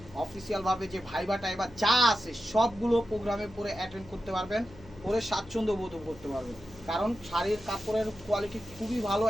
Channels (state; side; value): noise; left; hum, 20 dB below the sound